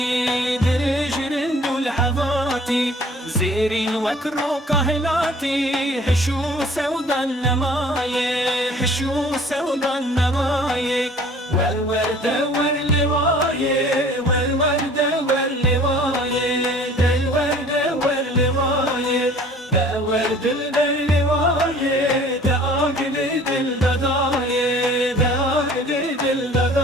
درجرن دول حباتي زيرين وكرو كهلاتي حشو سودا النماية حشو سودا النماية والورد واللواية والورد واللواية الورد واللواية دا ورد اللواية دا عقد الدداية دا عقد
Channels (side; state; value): both; normal; correlation 0.50